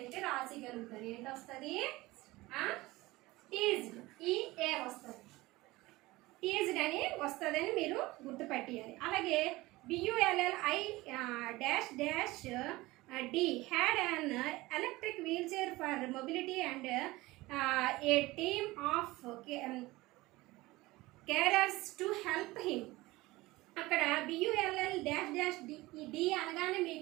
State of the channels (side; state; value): left; quieter; 19.9 dB